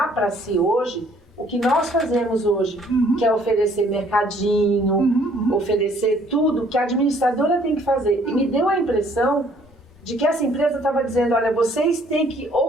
para si hoje o que nós fazemos hoje, que é oferecer mercadinho, oferecer tudo que a administradora tem que fazer. E me deu a impressão de que essa empresa estava dizendo, olha, vocês têm que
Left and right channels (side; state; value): both; normal; correlation 0.61